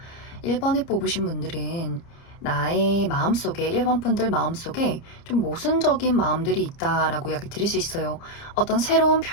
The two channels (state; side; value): late; right; 30 ms